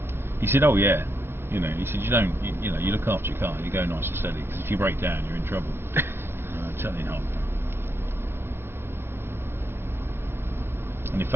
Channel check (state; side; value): late; left; 0.11 ms